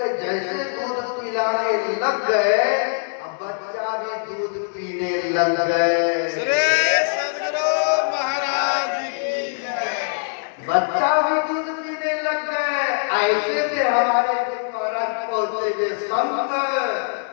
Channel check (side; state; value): right; silent; digital silence